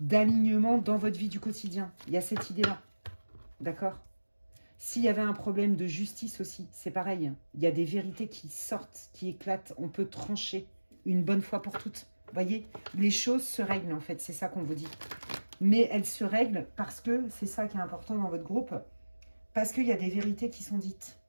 d'alignement dans votre vie du quotidien. Il y a cette idée-là. D'accord? S'il y avait un problème de justice aussi, c'est pareil. Il y a des vérités qui sortent, qui éclatent. On peut trancher une bonne fois pour toutes. Vous voyez? Les choses se règlent, en fait. C'est ça qu'on vous dit. Mais elles se règlent parce que, c'est ça qui est important dans votre groupe, parce qu'il y a des vérités qui sont dites.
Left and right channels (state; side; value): inverted; both; correlation -1.00